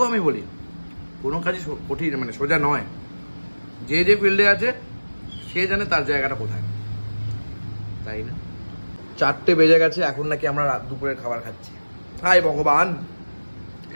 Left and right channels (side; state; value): both; inverted; correlation -1.00